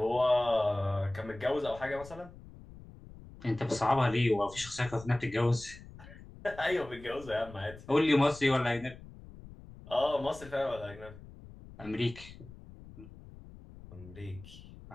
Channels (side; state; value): left; noise; rumble, 18 dB below the sound